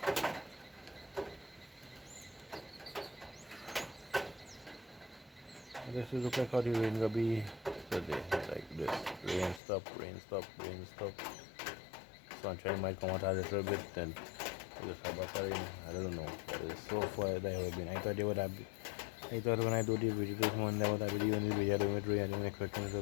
This is look like how the rain will be today, like this. Rain stop, rain stop, rain stop. Sunshine might come out a little bit, then it just have back rain. I don't know, but it's so far that have been. I thought they would have been. I thought when I do the video this morning, that would have been the only video I do with rain. I didn't expect it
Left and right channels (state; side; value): drops out; right; at 9.6 s